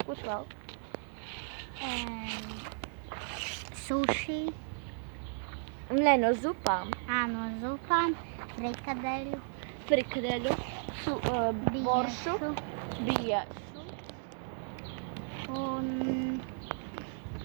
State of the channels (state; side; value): silent; left; digital silence